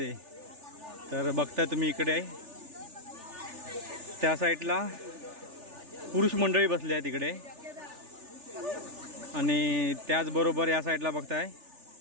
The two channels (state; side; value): late; left; 3.4 ms